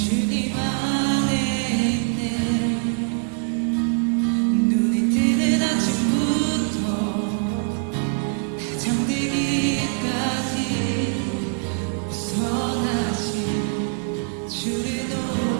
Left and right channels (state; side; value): silent; left; 55 dB below the other